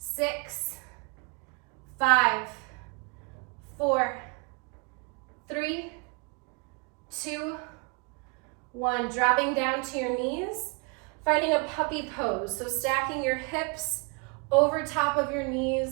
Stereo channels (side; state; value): left; quieter; 33.1 dB